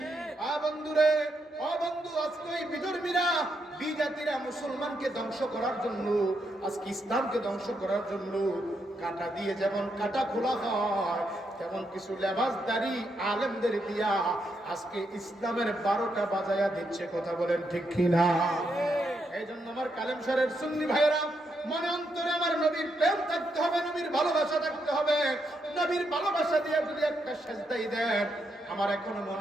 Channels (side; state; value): both; normal; correlation 0.80